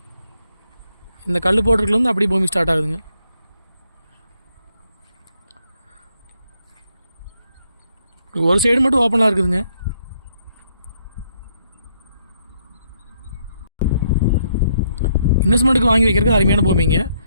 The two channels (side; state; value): both; inverted; correlation -0.73